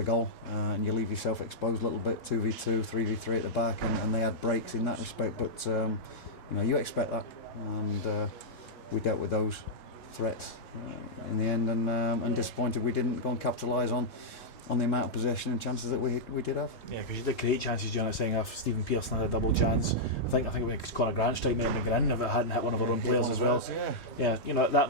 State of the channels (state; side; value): late; right; 3.2 ms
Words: goal, and you leave yourself exposed a little bit. 2v2, 3v3 at the back, and they had breaks in that respect. But you expect that, and we dealt with those threats in the end, and disappointed we didn't go and capitalise on the amount of possession and chances that we did have. Yeah, because you did create chances during that second half. Stephen Pearson had a double chance. I think it was Conor Grant strike might have been gone in if it hadn't hit one of our own players as well. Yeah, that